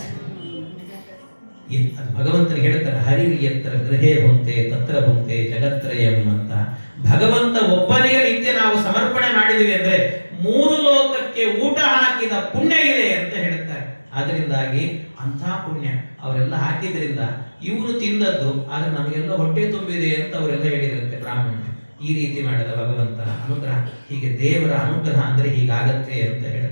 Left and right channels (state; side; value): inverted; both; correlation -1.00